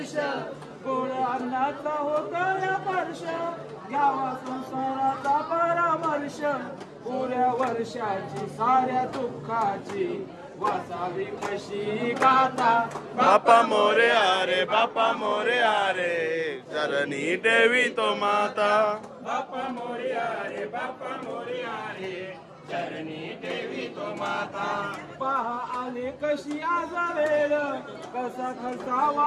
गोड अन्नाचा होतो या वर्ष घ्यावा संसाराचा परामर्श पुऱ्या वर्षाची साऱ्या दुःखाची वाचावी कशी गाथा बापा मोरया रे बापा मोरया रे चरणी ठेवितो माता बापा मोरया रे बापा मोरया रे चरणी ठेवितो माता पहा आले कशी आज वेळ कसा खसावा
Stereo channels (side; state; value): both; identical; correlation 1.00